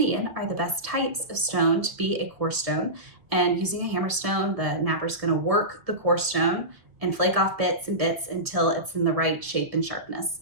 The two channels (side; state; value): left; late; 1.6 ms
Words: are the best types of stone to be a core stone, and using a hammer stone, the napper's going to work the core stone and flake off bits and bits until it's in the right shape and sharpness.